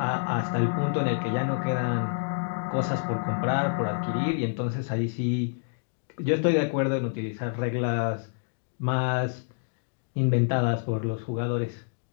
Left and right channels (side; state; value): right; silent; digital silence